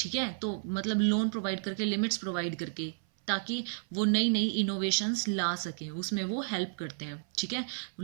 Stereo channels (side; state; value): left; silent; 57 dB below the other